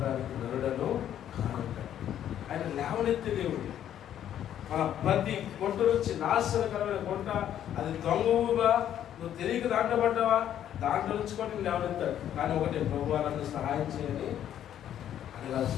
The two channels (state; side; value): quieter; right; 10.6 dB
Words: నరుడను కానుంటాడు. ఆయన లేవనెత్తే దేవుడు. మన ప్రతి గుంట నుంచి నాశనకరమైన గుంట, అది దొంగవుగా నువ్వు తెలియక దాంట్లో పడ్డావా, దాంట్లో నుంచి కూడా నేను లేవనెత్తాడు. కానీ ఒకటే, ప్రభువా నన్ను సహాయం చేయని